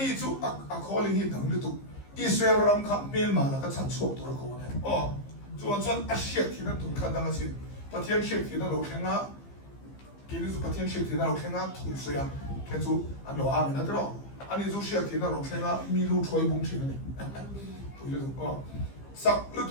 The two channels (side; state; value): right; late; 15 ms